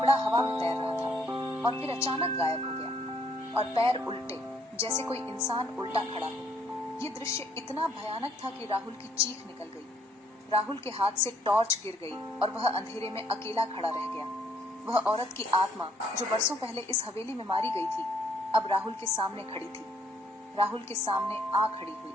हवा में तैर रहा था और फिर अचानक गायब हो गया और पैर उल्टे, जैसे कोई इंसान उल्टा खड़ा हो। ये दृश्य इतना भयानक था कि राहुल की चीख निकल गई। राहुल के हाथ से टॉर्च गिर गई और वह अंधेरे में अकेला खड़ा रह गया। वह औरत की आत्मा जो बरसों पहले इस हवेली में मारी गई थी, अब राहुल के सामने खड़ी थी। राहुल के सामने आ खड़ी हुई।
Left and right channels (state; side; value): normal; both; correlation 0.66